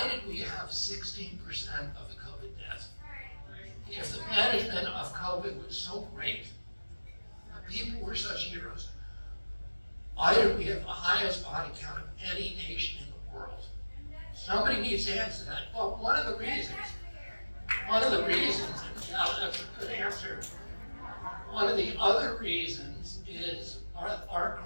did we have 16% of the COVID deaths? If the management of COVID was so great, the people were such heroes, why did we have the highest body count of any nation in the world? Somebody needs to answer that. Well, one of the reasons, and now that's a good answer, one of the other reasons is our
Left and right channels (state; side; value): inverted; both; correlation -1.00